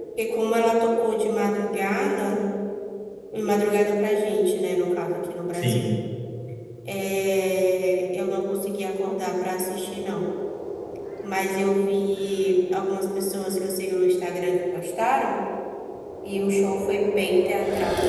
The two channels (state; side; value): identical; both; correlation 1.00